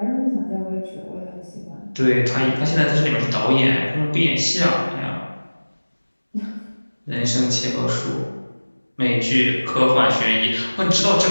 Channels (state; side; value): inverted; both; correlation -1.00